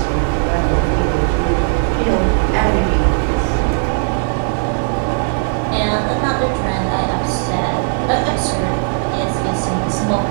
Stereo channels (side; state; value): left; silent; 64 dB below the other